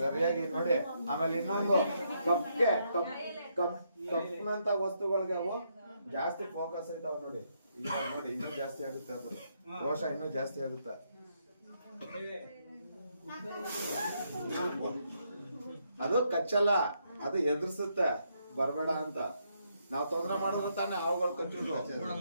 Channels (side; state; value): both; inverted; correlation -0.76